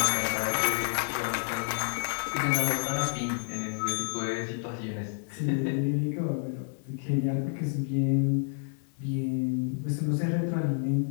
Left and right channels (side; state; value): right; silent; digital silence